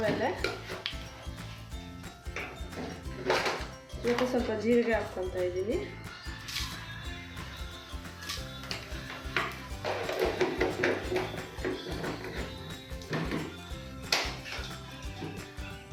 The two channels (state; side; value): identical; both; correlation 1.00